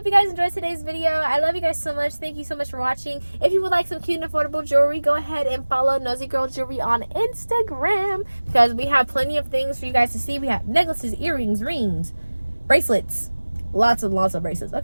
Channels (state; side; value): inverted; both; correlation -1.00